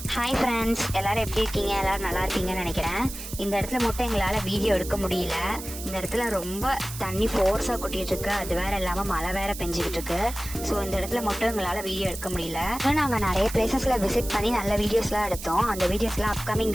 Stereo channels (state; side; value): noise; right; hiss, 11 dB below the sound